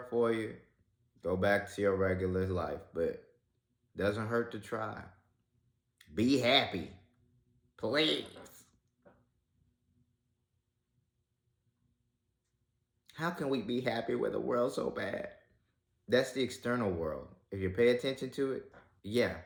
for you, go back to your regular life. But it doesn't hurt to try. Be happy. Please. How can we be happy with a world so bad? That's the external world. If you pay attention to it, yeah,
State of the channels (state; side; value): identical; both; correlation 1.00